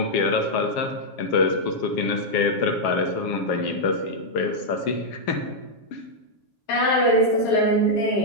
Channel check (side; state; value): right; late; 7.3 ms